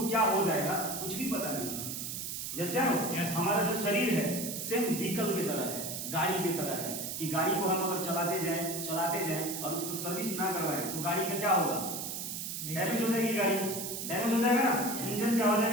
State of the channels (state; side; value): noise; right; hiss, 5 dB below the sound